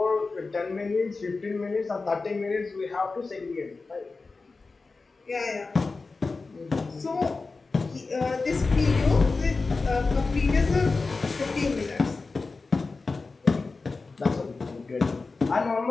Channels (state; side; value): quieter; right; 3.9 dB